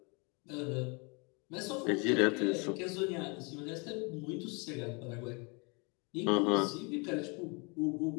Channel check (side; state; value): right; quieter; 31.4 dB